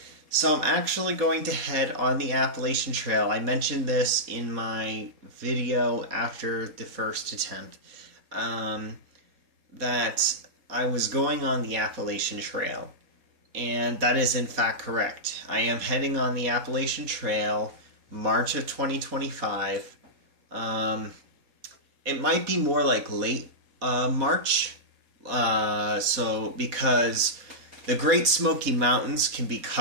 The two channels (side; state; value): left; late; 4.0 ms